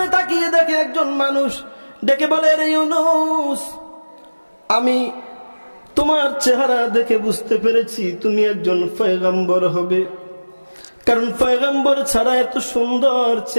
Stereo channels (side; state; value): both; inverted; correlation -1.00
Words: তাকিয়ে দেখে একজন মানুষ ডেকে বলে, রে ইউনূস, আমি তোমার চেহারা দেখে বুঝতে পেরেছি তুমি একজন পয়গম্বর হবে, কারণ পয়গম্বর ছাড়া এত সুন্দর